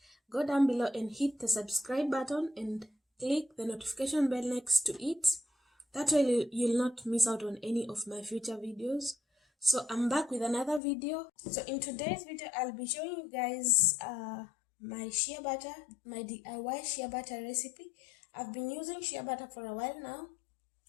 go down below and hit the subscribe button and click the notification bell next to it. That way you'll not miss out on any of my future videos. So I'm back with another video. So in today's video, I'll be showing you guys my shea butter, my DIY shea butter recipe. I've been using shea butter for a while now,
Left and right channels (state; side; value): drops out; right; at 10.8 s